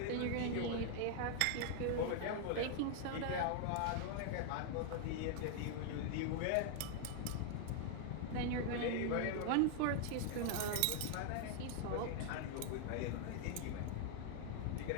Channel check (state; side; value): different; both; correlation 0.00